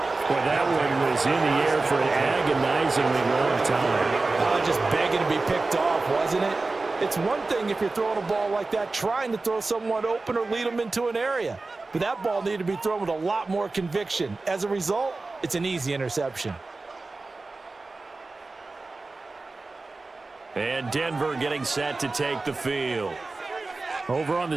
Boy, that one was in the air for an agonizingly long time. Just begging to be picked off, wasn't it? It's one thing if you're throwing a ball like that, trying to throw someone open or lead them into an area. But that ball needed to be thrown with a lot more conviction. As a result, it's an easy interception. And Denver getting set to take the field. Over on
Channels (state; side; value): quieter; left; 3.5 dB